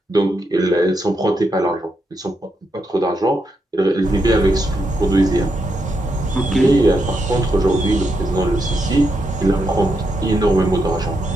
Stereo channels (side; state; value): both; normal; correlation 0.82